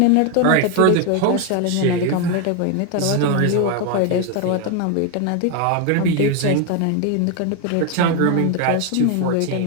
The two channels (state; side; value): different; both; correlation 0.01